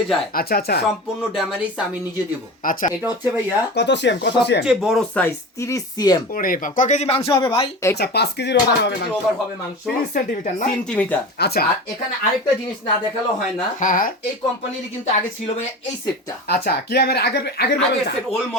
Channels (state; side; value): normal; both; correlation 0.31